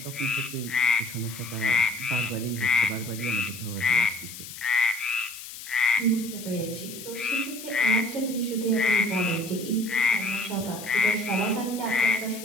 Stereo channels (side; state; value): left; noise; hiss, 12 dB below the sound